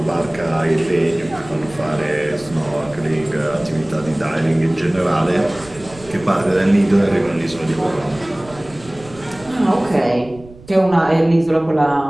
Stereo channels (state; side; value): noise; right; rumble, 20 dB below the sound